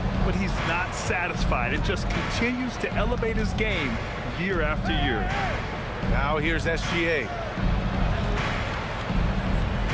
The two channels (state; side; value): identical; both; correlation 1.00